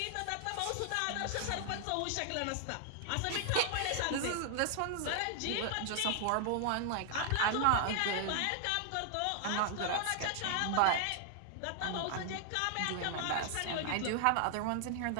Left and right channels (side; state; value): both; different; correlation 0.00